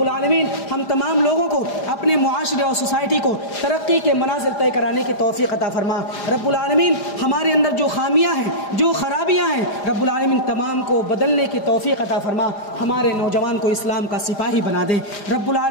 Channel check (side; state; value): right; late; 4.9 ms